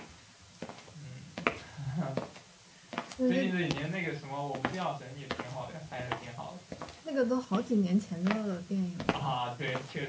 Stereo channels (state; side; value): identical; both; correlation 1.00